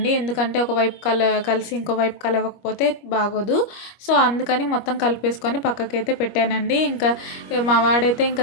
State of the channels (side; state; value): right; late; 25 ms